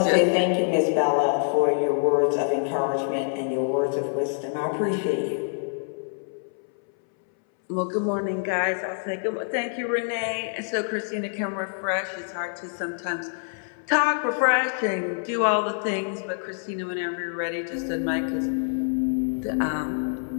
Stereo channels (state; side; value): silent; right; 61 dB below the other